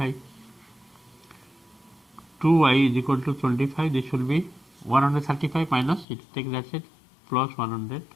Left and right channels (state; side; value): drops out; right; at 6.1 s